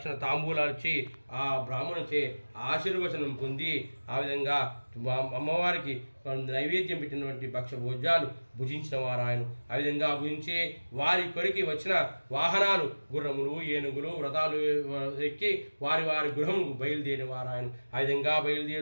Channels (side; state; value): both; inverted; correlation -1.00